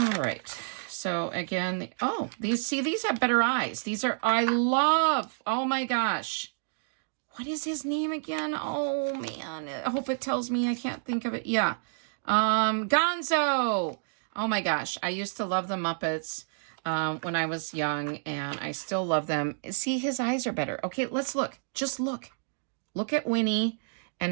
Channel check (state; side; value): silent; left; digital silence